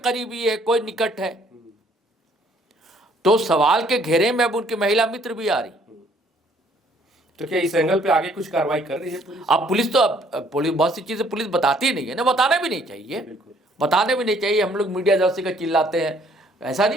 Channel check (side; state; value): both; normal; correlation 0.62